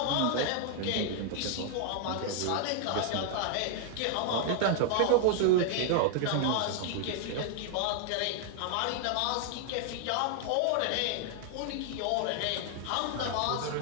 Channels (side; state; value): both; different; correlation 0.00